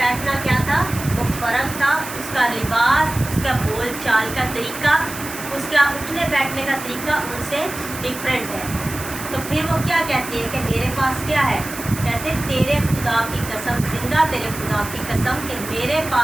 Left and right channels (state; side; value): noise; right; hiss, 11 dB below the sound